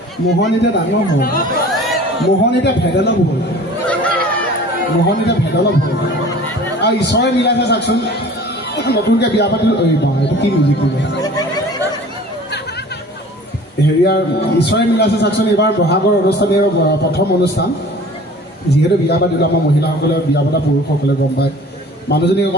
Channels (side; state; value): both; normal; correlation 0.45